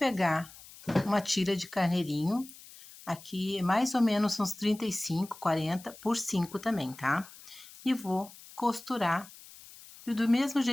uma tira de carneirinho, aqui mais ou menos uns 35, 40 por 5 também, tá? E vou costurar, e do mesmo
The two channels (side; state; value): left; noise; hiss, 19 dB below the sound